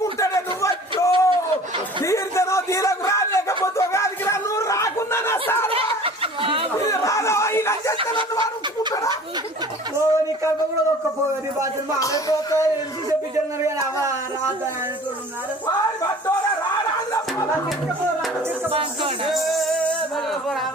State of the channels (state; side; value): normal; both; correlation 0.45